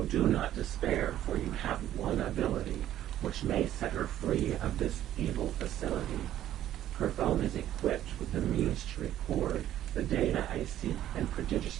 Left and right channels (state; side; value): quieter; left; 12.3 dB